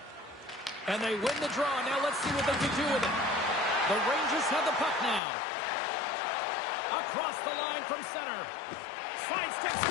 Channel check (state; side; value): drops out; right; at 5.2 s